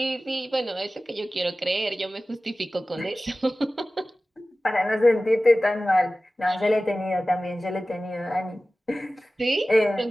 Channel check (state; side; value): normal; both; correlation 0.96